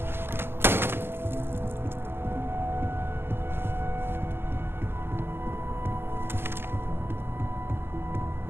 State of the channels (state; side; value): late; left; 0.11 ms